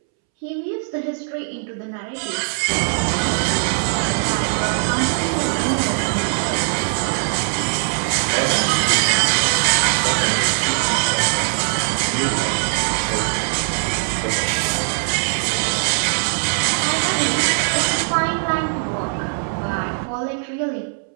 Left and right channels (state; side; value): silent; left; 65 dB below the other